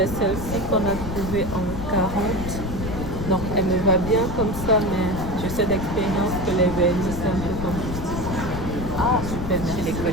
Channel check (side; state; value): left; noise; rumble, 6 dB below the sound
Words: celle-ci qu'on a trouvée en 40. Donc, elle me va bien comme ça, mais je sais d'expérience que les vernis, c'est un peu compliqué. Ah, super, merci les